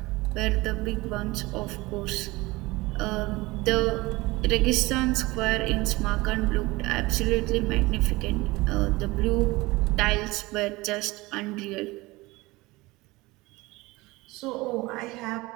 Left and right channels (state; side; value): quieter; left; 21.4 dB